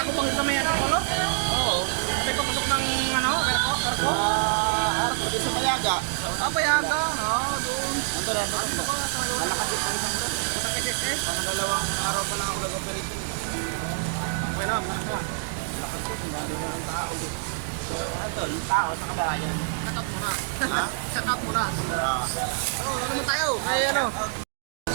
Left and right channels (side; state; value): left; silent; digital silence